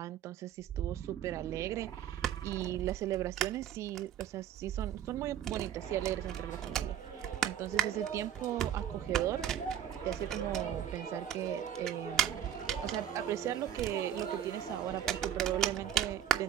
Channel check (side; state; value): left; quieter; 10.4 dB